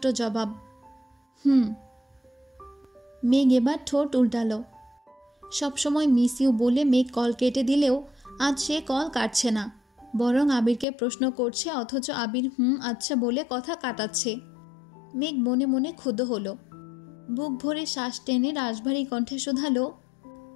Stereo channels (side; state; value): right; drops out; at 10.9 s